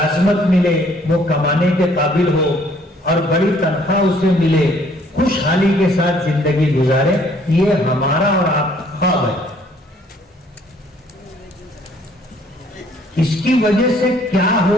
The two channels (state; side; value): normal; both; correlation 0.62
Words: ملے، وہ کمانے کے قابل ہو اور بڑی تنخواہ اسے ملے، خوشحالی کے ساتھ زندگی گزارے، یہ ہمارا اور آپ کا خواب ہے۔ اس کی وجہ سے کیا